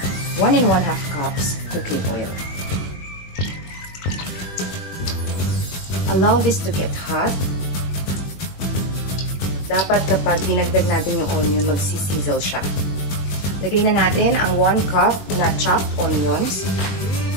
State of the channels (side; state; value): right; late; 21 ms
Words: 1 1/2 cups cooking oil. Allow this to get hot. Dapat kapag dinagdag natin yung onion, magsisizzle siya. Lagay na natin ang 1 cup na chopped onions.